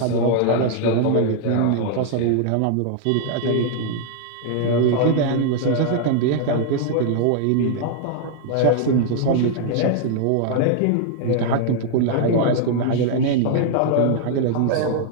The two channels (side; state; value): both; different; correlation -0.01